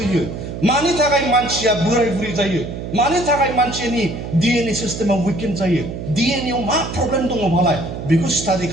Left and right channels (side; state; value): right; noise; hum, 8 dB below the sound